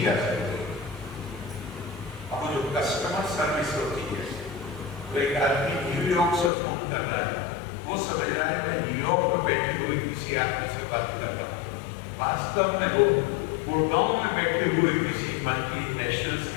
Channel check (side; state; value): right; drops out; at 6.5 s